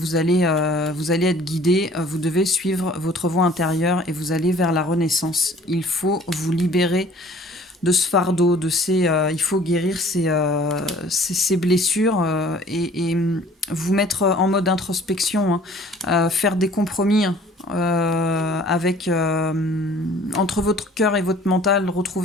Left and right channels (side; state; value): both; normal; correlation 0.51